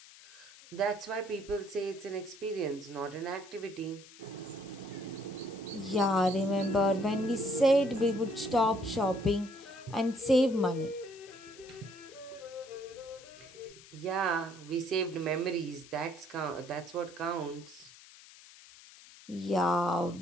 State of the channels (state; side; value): noise; left; hiss, 20 dB below the sound